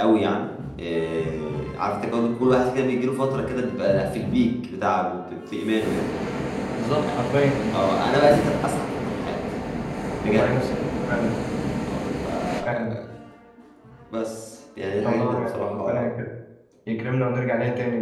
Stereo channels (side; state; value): both; identical; correlation 1.00